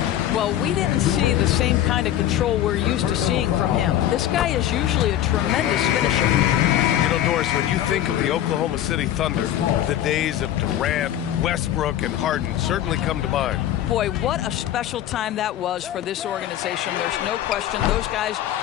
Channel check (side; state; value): right; quieter; 11.9 dB